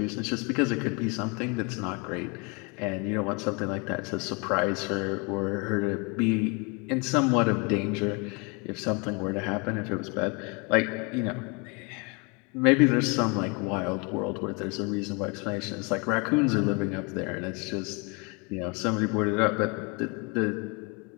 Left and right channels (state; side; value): quieter; right; 31.4 dB